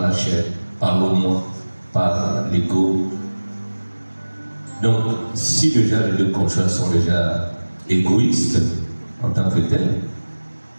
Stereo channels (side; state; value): both; inverted; correlation -1.00